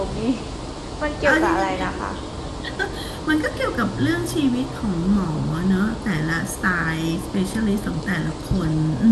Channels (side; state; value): both; identical; correlation 1.00